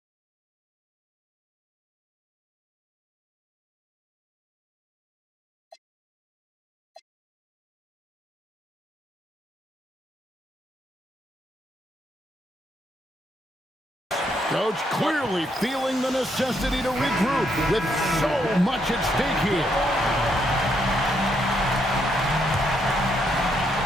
Coach clearly feeling the necessity to regroup with so much at stake here.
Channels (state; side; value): normal; both; correlation 0.76